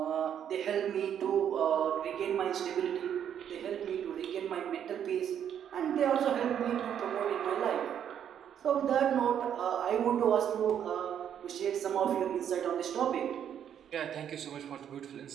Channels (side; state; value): left; quieter; 9.2 dB